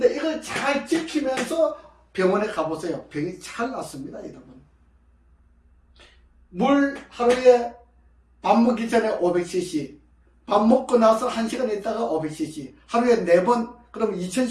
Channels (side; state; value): both; identical; correlation 1.00